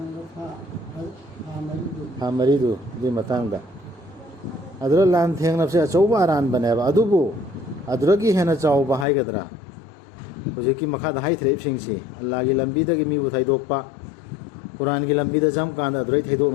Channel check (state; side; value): drops out; right; at 9.1 s